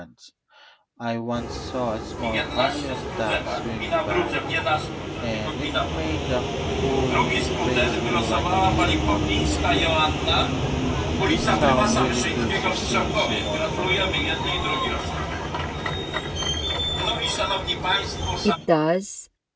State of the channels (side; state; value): both; identical; correlation 1.00